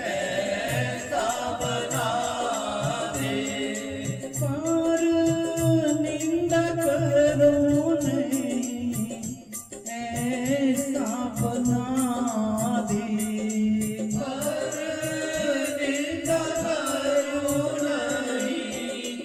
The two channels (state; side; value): identical; both; correlation 1.00